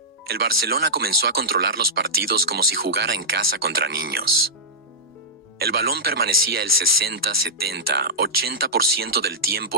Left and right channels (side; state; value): both; normal; correlation -0.10